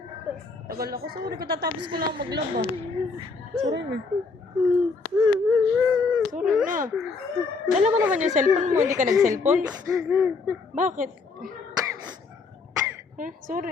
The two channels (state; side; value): quieter; right; 4.3 dB